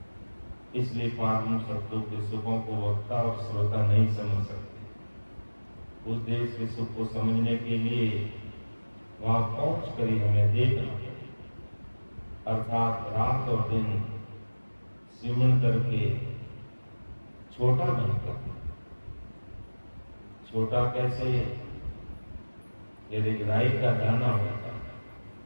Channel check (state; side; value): inverted; both; correlation -1.00